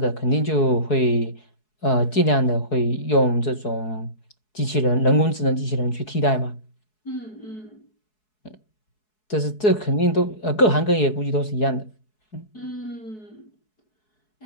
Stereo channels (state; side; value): late; right; 4.7 ms